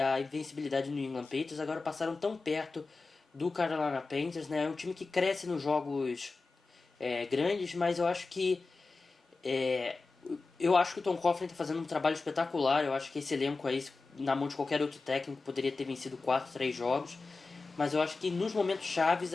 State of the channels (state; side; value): quieter; right; 3.9 dB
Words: invencibilidade do New England Patriots, agora passaram tão perto do Carolina Panthers, né? É um time que cresce nos jogos grandes, mas eu acho que o Tom Coughlin está fazendo um trabalho espetacular. Eu acho que esse elenco aí, na mão de qualquer outro técnico, poderia ter vencido 4, 3 jogos. Mas eu acho que nos momentos chaves